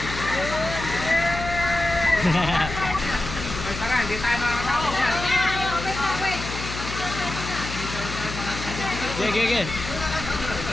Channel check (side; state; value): left; noise; hum, 7 dB below the sound